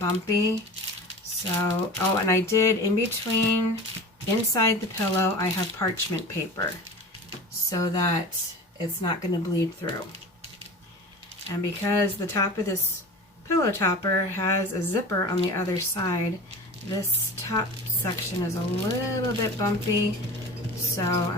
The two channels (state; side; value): normal; both; correlation 0.35